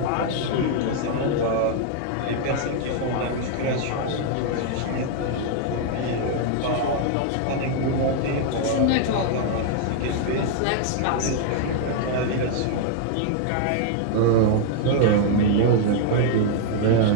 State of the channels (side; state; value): both; different; correlation 0.00